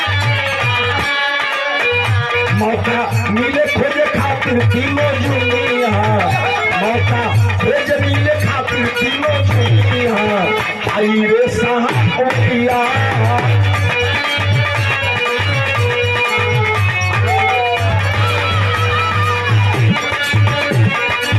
मौका मिले खोजे खातिर किलो जुनिया, मौका खोजे मिले खातिर किलो जुनिया, आई रे सावरिया।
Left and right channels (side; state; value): both; identical; correlation 1.00